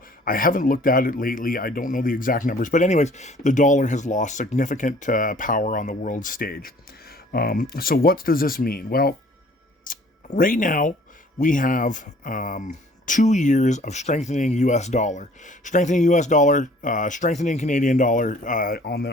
I haven't looked at it lately. I don't know the exact numbers, but anyways, the dollar has lost significant power on the world stage. So what does this mean? Well, right now we have 2 years of strengthening US dollar, strengthening Canadian dollar on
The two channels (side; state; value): both; normal; correlation 0.54